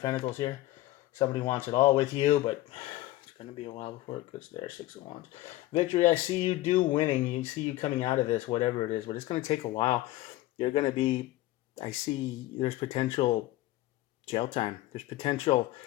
Pentacles here. Somebody wants it all with you, but it's going to be a while before it gets there. Six of Wands. Victory, I see you winning. You see you coming out of this, whatever it is, but it's going to take a while. You're going to be, I see there's potential jail time. There's potential,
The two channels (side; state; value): right; quieter; 16.5 dB